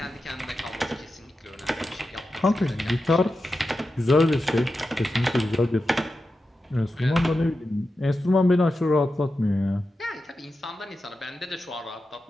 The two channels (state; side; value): normal; both; correlation 0.91